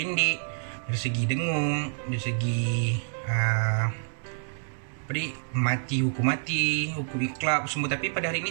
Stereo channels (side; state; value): left; silent; digital silence